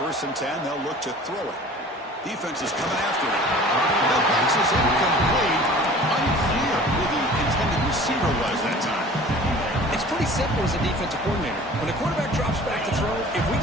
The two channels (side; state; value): both; normal; correlation 0.45